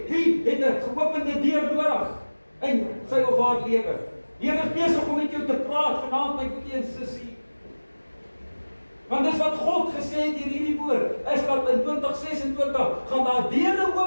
Wie het 'n geopende deur nodig in sy of haar lewe? Die Here is besig om met jou te praat vanaand, my broer en sussie. Want dis wat God gesê het deur hierdie woord, is dat in 2026 gaan daar deure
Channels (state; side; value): inverted; both; correlation -1.00